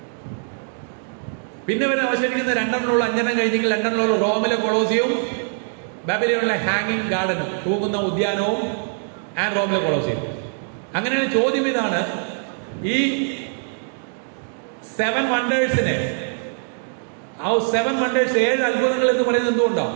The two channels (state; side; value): silent; left; 58 dB below the other